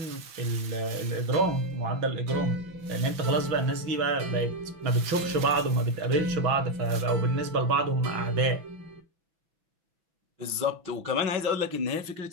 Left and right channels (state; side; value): late; left; 6.0 ms